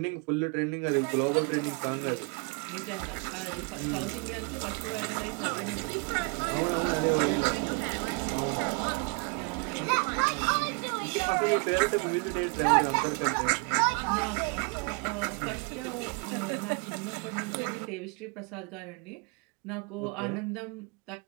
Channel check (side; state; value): left; quieter; 33.0 dB